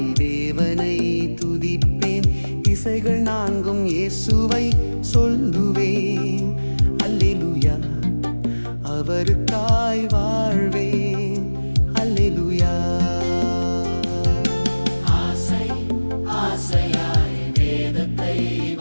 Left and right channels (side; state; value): both; inverted; correlation -1.00